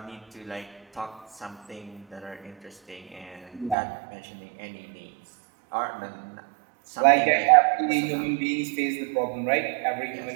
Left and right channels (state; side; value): drops out; left; at 3.8 s